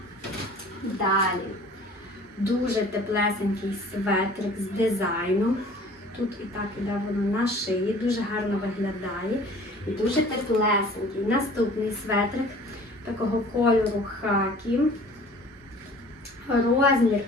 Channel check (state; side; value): normal; both; correlation 0.48